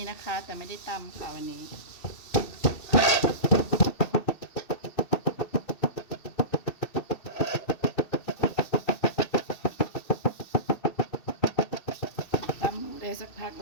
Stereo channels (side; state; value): right; late; 2.6 ms